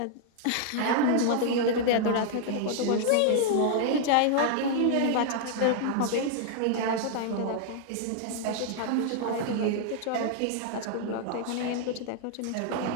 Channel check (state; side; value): different; both; correlation 0.00